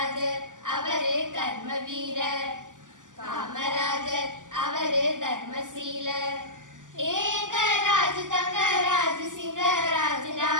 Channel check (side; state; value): left; late; 0.88 ms